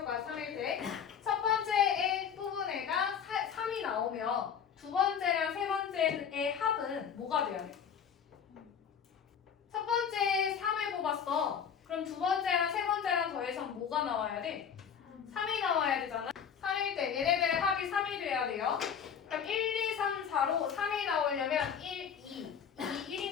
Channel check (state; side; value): quieter; right; 7.6 dB